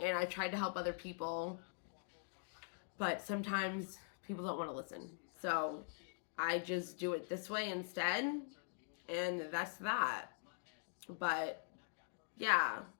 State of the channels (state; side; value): silent; right; digital silence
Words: I tried to help other people, but sometimes people don't want to listen. So I just do it this way instead, and that's that. But yeah,